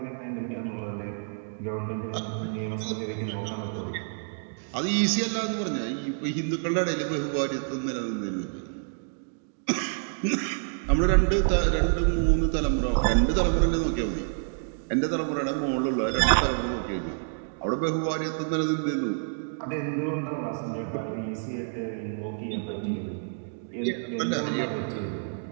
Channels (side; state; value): left; silent; digital silence